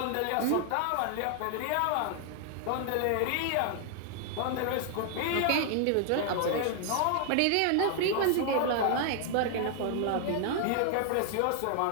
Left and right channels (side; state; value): both; different; correlation 0.00